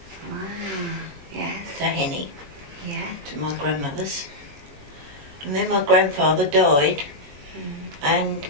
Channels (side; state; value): left; late; 21 ms